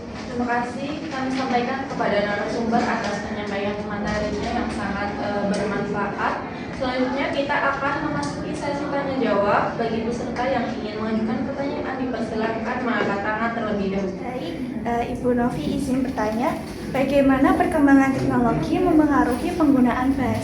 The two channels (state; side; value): identical; both; correlation 1.00